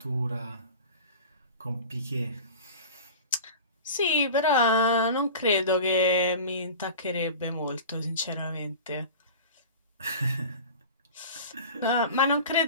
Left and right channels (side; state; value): both; inverted; correlation -0.36